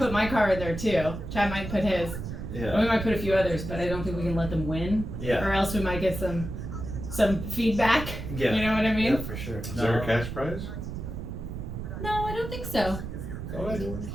my car in there too. Chad might put his. Yeah. We might put a few others, but I don't think we can let them win. Yeah. Or else we might get some feedback. Yeah. You know what I mean? Yeah, for sure. Is there a cash prize? No, I don't think so. What?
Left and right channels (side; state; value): right; noise; rumble, 7 dB below the sound